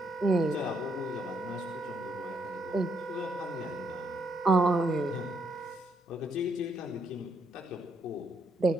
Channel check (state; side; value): normal; both; correlation 0.74